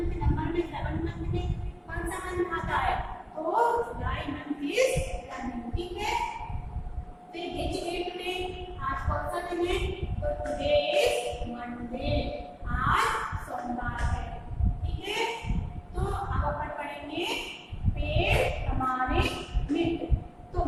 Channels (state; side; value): identical; both; correlation 1.00